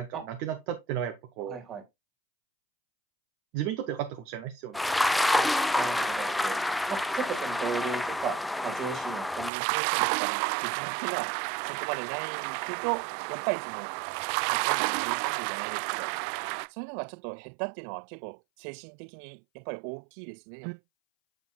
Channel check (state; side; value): drops out; left; at 9.5 s